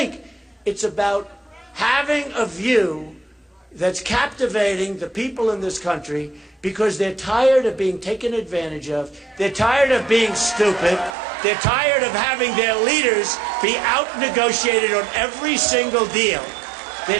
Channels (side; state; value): left; drops out; at 11.2 s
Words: it's about having a view that's captivating the people in this country because they're tired of being taken advantage of, they're tired of being stupid, they're tired of having their leaders be out-negotiated on every single deal.